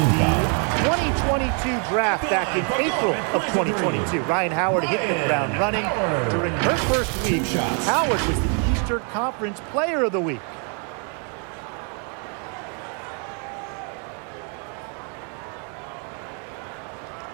the 2022 draft back in April of 2022. Ryan Howard hitting the ground running. During her first week, Howard was the Eastern Conference Player of the Week.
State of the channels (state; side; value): quieter; left; 39.8 dB